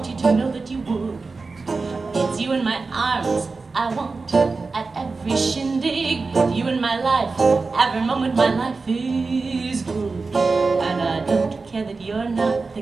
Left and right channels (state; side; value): quieter; left; 4.1 dB